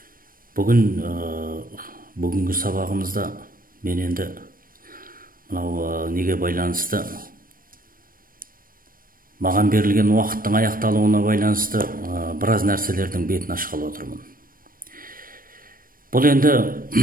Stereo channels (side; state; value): left; late; 0.41 ms